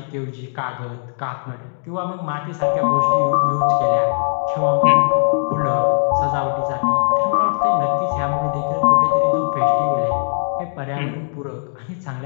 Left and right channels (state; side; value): silent; right; digital silence